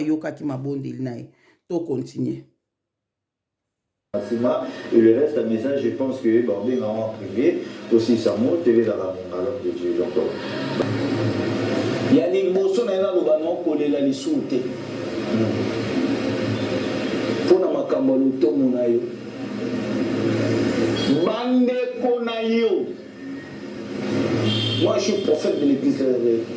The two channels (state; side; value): identical; both; correlation 1.00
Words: ki mabondeli nae. To continue. remerciements et le reste, un message, je pense que Barbé m'a en privé, aussi ça monte, TV dans la alors de Dieu encore. Il y a des bossons dans le banon collé la lissoute. Pour na makambo luto munayo. Bande konayo. Moi je suis prophète de l'église de réveil.